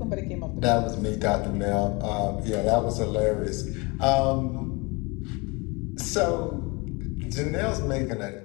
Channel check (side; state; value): right; quieter; 27.3 dB